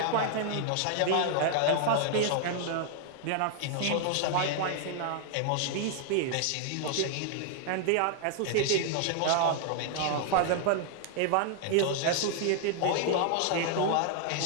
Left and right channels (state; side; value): different; both; correlation 0.00